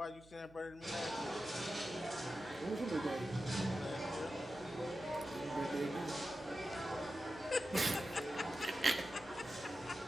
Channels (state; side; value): noise; right; hum, 23 dB below the sound